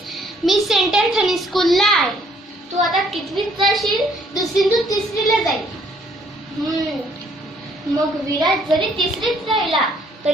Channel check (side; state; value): both; normal; correlation 0.65